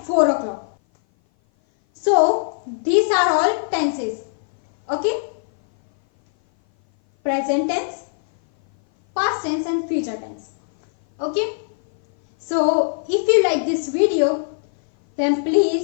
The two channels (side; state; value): right; silent; 58 dB below the other